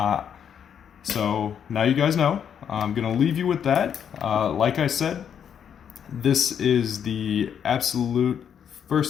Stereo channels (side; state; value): right; quieter; 8.3 dB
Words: So now you guys know. I'm going to leave you with that. Like I said, this is the absolute